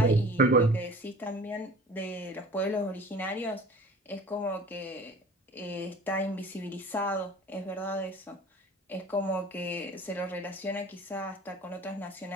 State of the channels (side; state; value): both; normal; correlation 0.43